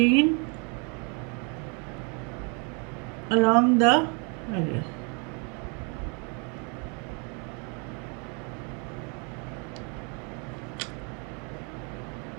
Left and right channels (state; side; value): quieter; left; 34.9 dB